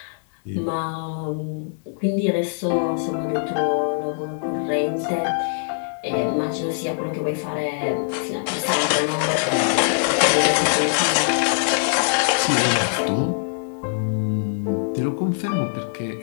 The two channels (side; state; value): right; silent; 64 dB below the other